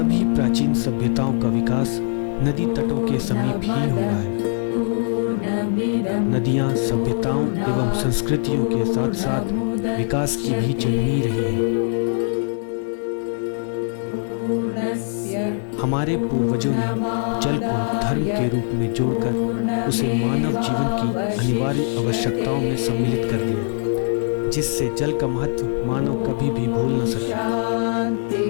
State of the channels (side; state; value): right; silent; 57 dB below the other